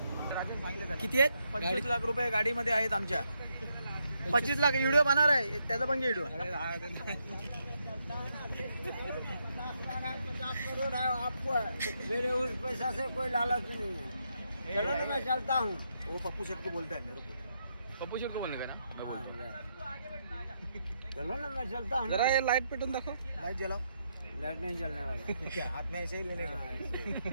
किती आहेत? 25 लाख रुपये गाडीमध्ये आहेत आमच्या. 25 लाख व्हिडिओ बनणार आहे. त्याचा पण व्हिडिओ. 50 करोड़ है आपको. मेरे उस पैसा से कोई लालच नहीं है. चलो ना मैं चलता हूँ. वो पप्पू शेठ को बोलता है मेरे को. पप्पू शेठ को बोलने का ना. चलो ना मैं चलता हूँ. जरा ये लाइट पेटून दाखव. लाइट जलाओ. लाइट नहीं चलने वाला क्या हाथ में ऐसे ही लेने का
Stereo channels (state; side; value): inverted; both; correlation -0.79